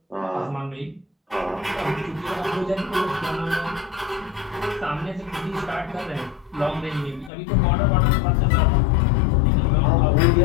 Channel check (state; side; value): drops out; right; at 7.3 s